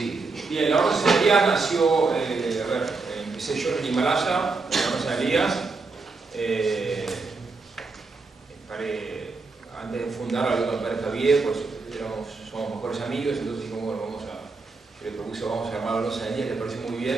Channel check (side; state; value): left; quieter; 4.0 dB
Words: Bien, la Orden San Elías nació, empecé yo en Himalaya, la Orden San Elías. Antes de fundar hablé con el padre Javier, pues somos mejores amigos, entonces dijimos, bueno, yo le propuse, vamos a armar la Orden San Elías, le pareció muy